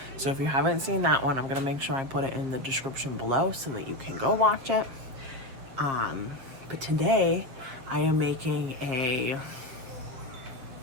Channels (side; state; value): left; late; 7.7 ms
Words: So if you haven't seen that one, I'm going to make sure I put it in the description below so that you can go watch it. But today I am making a